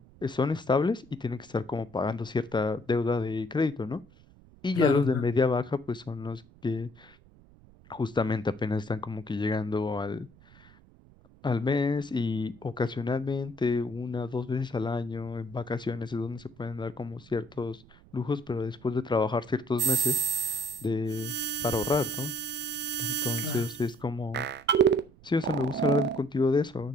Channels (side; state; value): right; noise; rumble, 25 dB below the sound